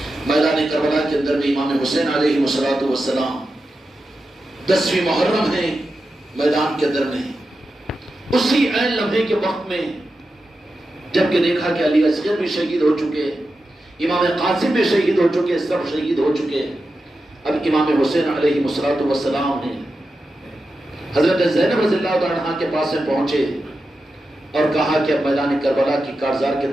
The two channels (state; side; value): normal; both; correlation 0.90